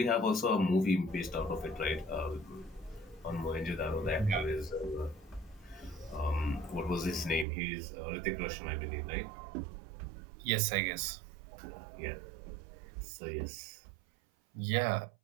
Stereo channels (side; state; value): left; drops out; at 7.5 s